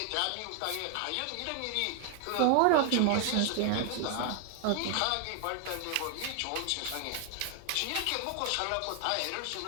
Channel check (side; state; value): both; different; correlation 0.00